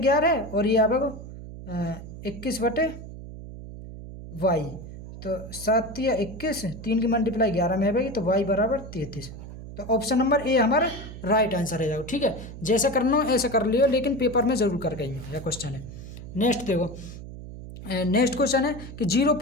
और ये आएगा 21/y, तो 7 तिया 21, 3 की मल्टीप्लाई 11 में आएगी तो y बराबर 33। तो ऑप्शन नंबर ए हमारा राइट आंसर है जाओ, ठीक है। जैसे करना हो ऐसे कर लियो, लेकिन पेपर में जरूर करके आइयो, यह क्वेश्चन है। नेक्स्ट देखो, नेक्स्ट क्वेश्चन है कि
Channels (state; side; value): noise; right; hum, 12 dB below the sound